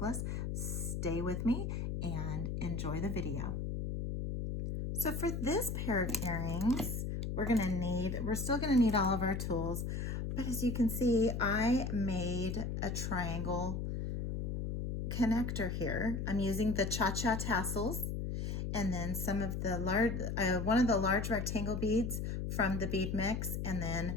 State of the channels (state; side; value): noise; left; hum, 2 dB below the sound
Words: stay with me and enjoy the video. So for this pair of earrings, we're still gonna need all of our tools, but as you can see, I made a triangle connector here. I'm using the Cha-Cha tassels and then some of the one of the large rectangle beads from the bead mix, and then